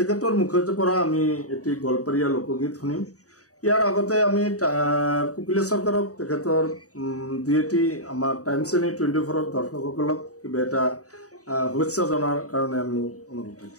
মুখৰ পৰা আমি এটি গল্পৰীয়া লোকগীত শুনিম। ইয়াৰ আগতে আমি কোকিলেশ সৰকাৰক তেখেতৰ দুইটি আমাৰ টাইমছ 24 দৰ্শকসকলক কিবা এটা শুভেচ্ছা জনাৰ কাৰণে আমি অনুৰোধ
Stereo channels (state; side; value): late; right; 0.66 ms